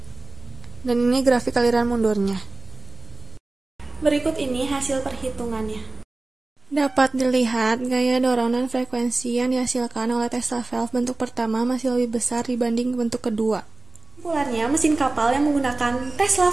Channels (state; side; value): quieter; left; 3.0 dB